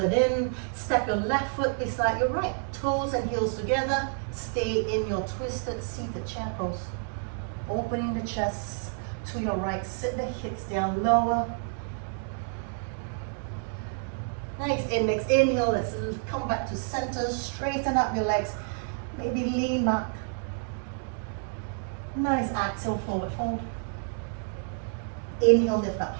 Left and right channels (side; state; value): left; silent; 59 dB below the other